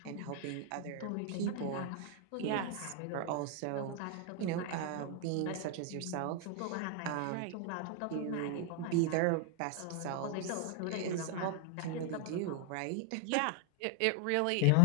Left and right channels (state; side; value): different; both; correlation 0.00